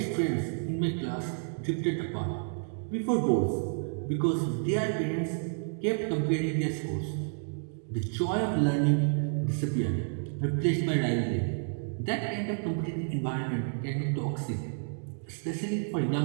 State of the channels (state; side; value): silent; left; digital silence